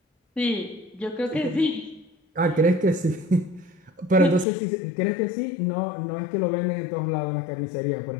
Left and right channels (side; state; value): right; drops out; at 4.5 s